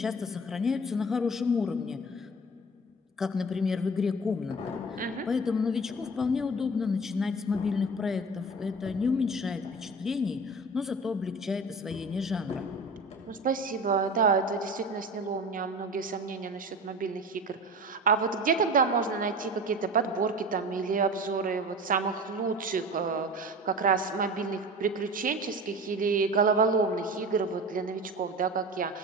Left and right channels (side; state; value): both; normal; correlation 0.35